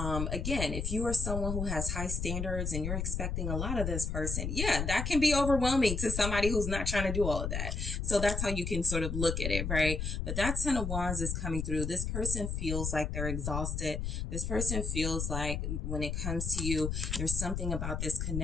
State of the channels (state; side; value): noise; left; rumble, 2 dB below the sound